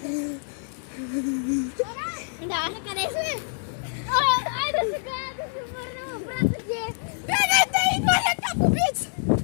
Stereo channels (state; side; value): silent; right; digital silence